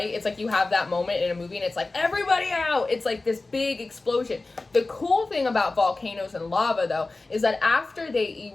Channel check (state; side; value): quieter; right; 3.3 dB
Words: It's like you have that moment in a movie and it's like, everybody out. It's like this big explosion. The cool thing about volcanoes and lava, though, is that after they